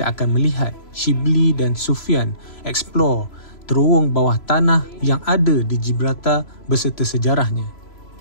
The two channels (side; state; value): right; late; 3.0 ms